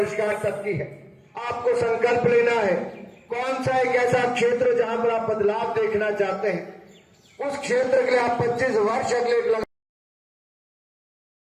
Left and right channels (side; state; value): both; identical; correlation 1.00